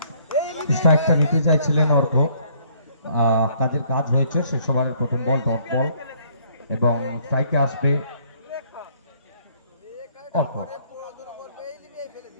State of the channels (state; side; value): inverted; both; correlation -0.63